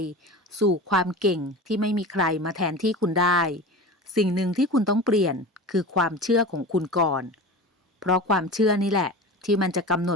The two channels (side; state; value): both; normal; correlation 0.32